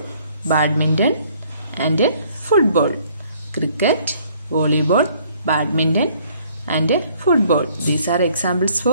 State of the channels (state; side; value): inverted; both; correlation -0.61